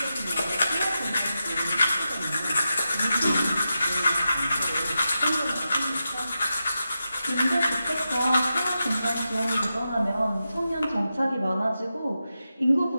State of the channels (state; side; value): inverted; both; correlation -0.89